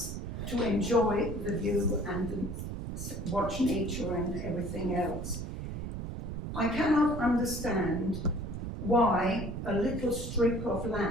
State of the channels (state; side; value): noise; right; rumble, 6 dB below the sound